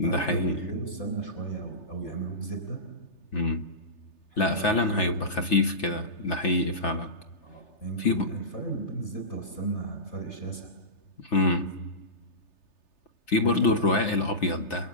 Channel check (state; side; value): late; right; 3.3 ms